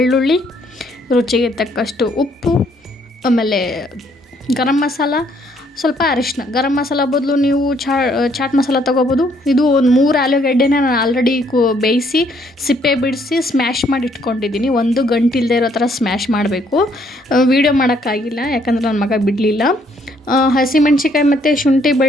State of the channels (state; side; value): normal; both; correlation 0.67